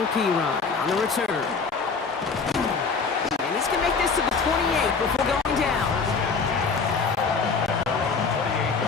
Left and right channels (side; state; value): right; quieter; 4.9 dB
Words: Perine on the return. And he's going to make this to the 28 before going down.